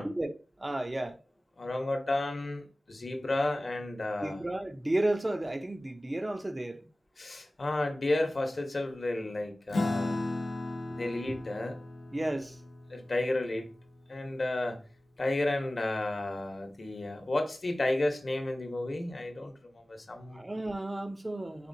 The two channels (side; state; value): both; normal; correlation 0.97